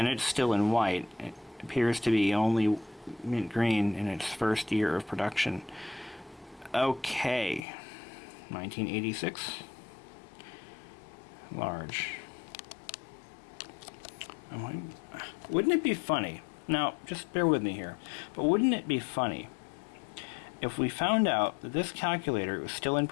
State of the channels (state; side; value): drops out; right; at 7.6 s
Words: it's still in white. It appears to be only mint green in its first year of production. Okay. 1986. Large. Wouldn't it be funny Now, just bear with me here, but wouldn't it be funny if we found out that this calculator was still in